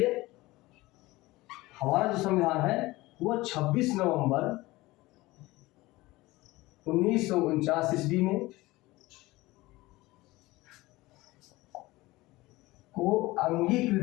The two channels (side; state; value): right; quieter; 19.8 dB